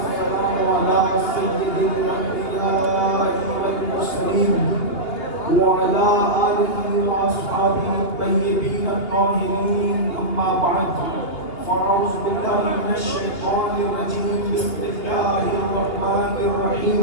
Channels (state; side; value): late; right; 2.7 ms